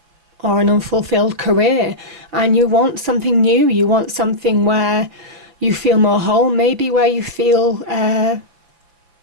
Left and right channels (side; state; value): left; late; 5.8 ms